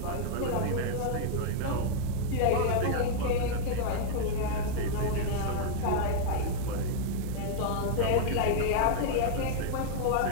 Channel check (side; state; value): both; different; correlation -0.01